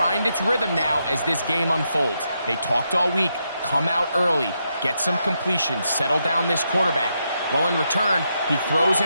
its rhythm now as this game unfolds. They talked all week, come out early, get some completions, settle down this quarterback. Well, in return, he throws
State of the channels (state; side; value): inverted; both; correlation -0.82